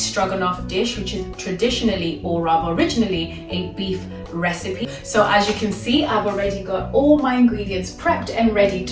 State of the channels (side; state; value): both; identical; correlation 1.00